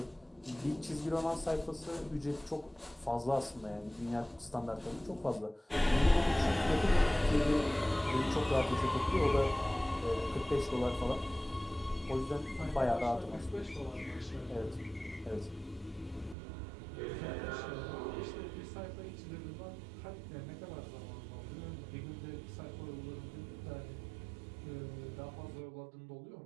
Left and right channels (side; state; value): left; drops out; at 16.4 s